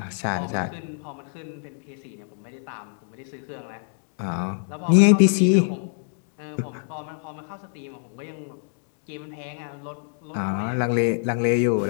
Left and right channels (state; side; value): silent; right; digital silence